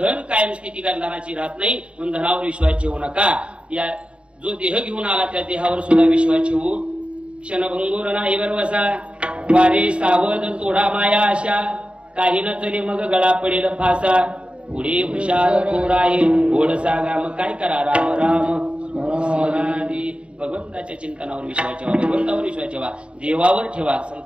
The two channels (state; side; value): late; left; 0.058 ms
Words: कायम स्थिती धनाची राहत नाही. म्हणून धनावर विश्वास ठेवू नका. या जो देह घेऊन आला त्या देहावर सुद्धा विश्वास ठेवू. क्षणभंगूर नाही बरवसा वारे सावध तोडा माया आशा. काही न चले मग गळा पडेल फासा. पुढे हुशार थोर आहे गोड सागा. मग काय करा राम राम स्मरादी. भगवंताच्या चिंतनावर विश्वास ठेवा. भगवंतावर विश्वास ठेवा. देवावर ठेवा.